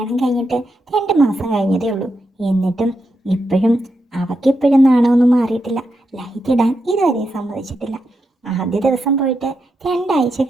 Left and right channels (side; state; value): both; normal; correlation 0.85